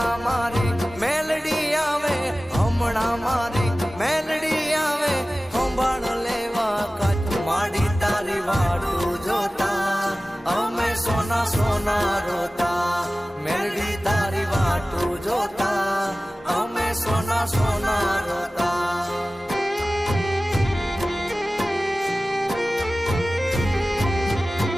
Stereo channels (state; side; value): normal; both; correlation 0.97